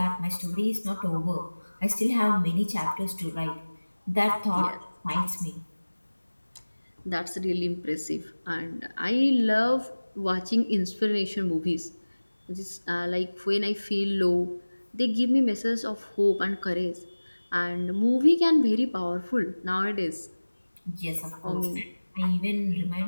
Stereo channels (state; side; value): inverted; both; correlation -1.00